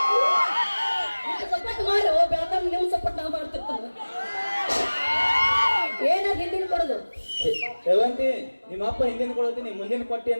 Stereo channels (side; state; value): both; inverted; correlation -1.00